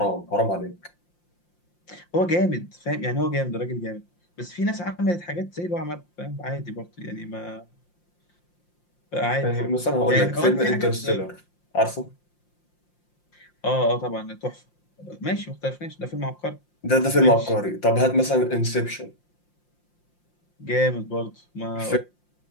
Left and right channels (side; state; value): right; late; 5.7 ms